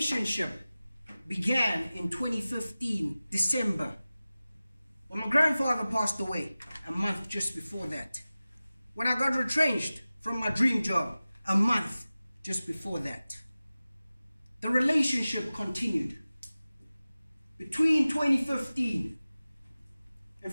began in 2015, December, when my grandfather passed away a month just before that. When I got retrenched from my dream job a month just before that. The relationship continued. Between 2015 and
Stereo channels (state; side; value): inverted; both; correlation -0.97